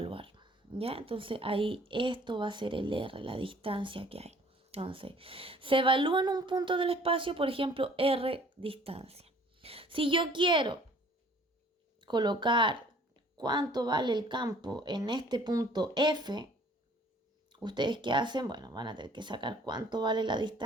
¿Ya? Entonces ahí esto va a ser el R, la distancia que hay. Entonces, se evalúa en un punto del espacio, por ejemplo, R distancia. Si yo quiero colocar cuánto vale el campo en este punto F, ¿ustedes qué hacen? Bueno, van a tener que sacar cuánto vale la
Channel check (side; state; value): both; normal; correlation 0.55